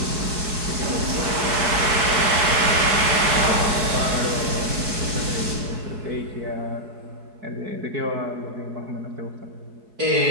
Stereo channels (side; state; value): left; late; 4.7 ms